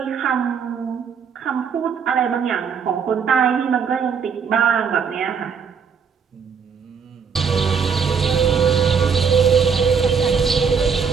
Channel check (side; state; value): left; quieter; 6.3 dB